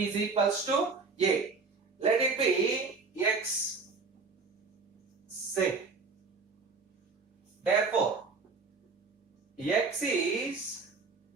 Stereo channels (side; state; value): left; quieter; 4.4 dB